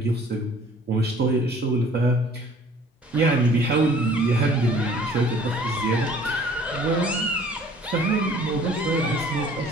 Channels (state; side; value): normal; both; correlation 0.53